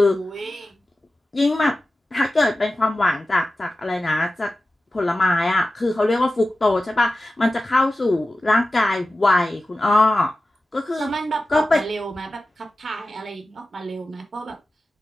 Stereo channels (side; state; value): both; normal; correlation 0.94